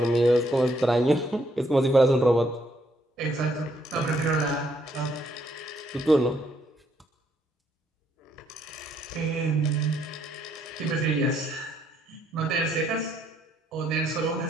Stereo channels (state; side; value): normal; both; correlation 0.71